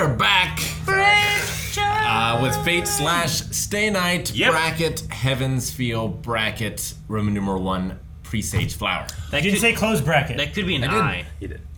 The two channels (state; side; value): identical; both; correlation 1.00